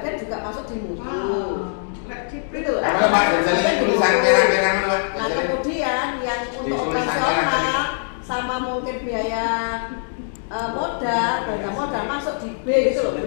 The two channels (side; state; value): right; silent; digital silence